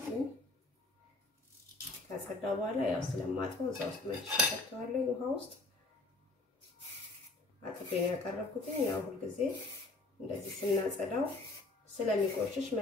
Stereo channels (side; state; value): right; quieter; 3.1 dB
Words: ካጸዳው በኋላ ያው ስለማጥበው እዛው ውስጥ መጭ ከተዋለሁ። ውሃ ውስጥ አጥቤ ያቀረብኩት ያው ሁሉ ጊዜ እንደዚህ ስናጸዳው ስለሚቆሽሽ